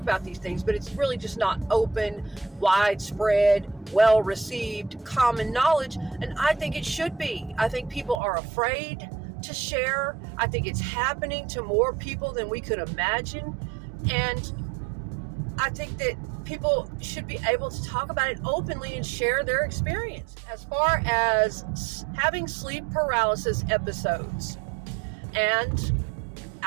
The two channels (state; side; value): drops out; left; at 8.2 s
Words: these things, but it's really just not open, widespread, well-received, common knowledge, and I think it should be. I think people are afraid to share. I think it's happening to more people than we could imagine, and I think that people should be able to talk about it openly and share their experience. As far as having sleep paralysis episodes and